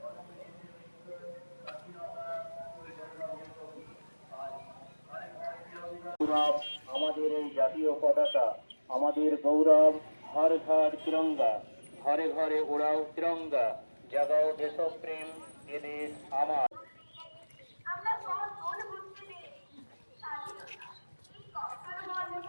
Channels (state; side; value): inverted; both; correlation -1.00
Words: আমাদের এই জাতীয় পতাকা, আমাদের গৌরব। হর ঘর তিরঙ্গা, ঘরে ঘরে ওড়াও তিরঙ্গা, জাগাও দেশপ্রেম, এ দেশ আমার।